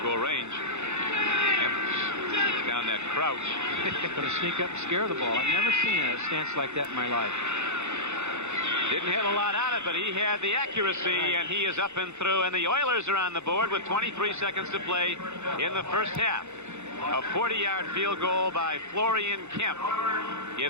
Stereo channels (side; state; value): left; late; 0.82 ms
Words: goal range. Kemp down that crouch. Going to sneak up and scare the ball. I've never seen a stance like that in my life. Didn't hit a lot on it, but he had the accuracy, and he is up and through. And the Oilers are on the board with 23 seconds to play in the first half. A 40-yard field goal by Florian Kemp